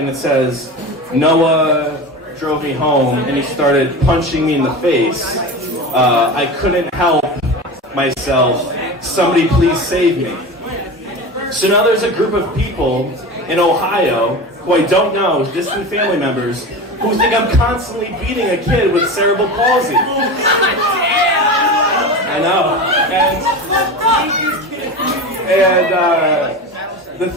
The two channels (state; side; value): normal; both; correlation 0.28